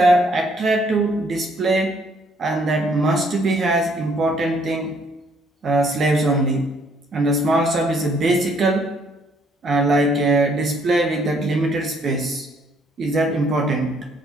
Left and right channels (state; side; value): normal; both; correlation 0.66